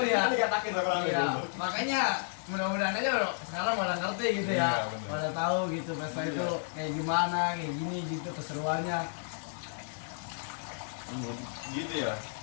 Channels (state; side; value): silent; right; digital silence